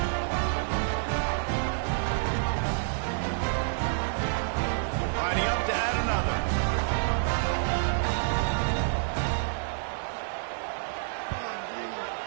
Lining up to add another.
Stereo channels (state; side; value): silent; left; digital silence